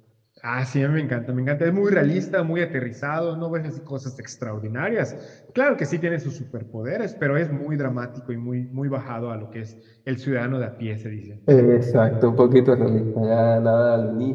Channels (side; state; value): both; identical; correlation 1.00